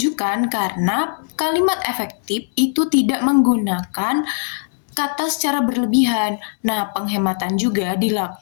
karena kalimat efektif itu tidak menggunakan kata secara berlebihan. Nah, penghematan juga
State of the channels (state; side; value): silent; right; digital silence